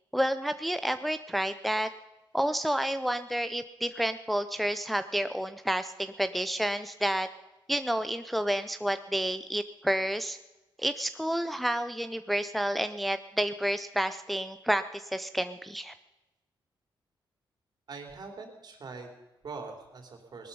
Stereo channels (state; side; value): normal; both; correlation 0.95